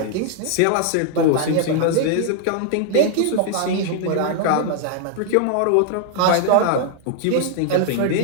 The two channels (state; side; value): different; both; correlation -0.01